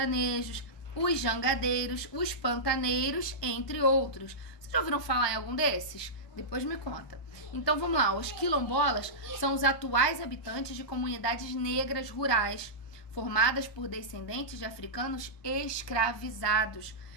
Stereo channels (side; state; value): right; late; 1.2 ms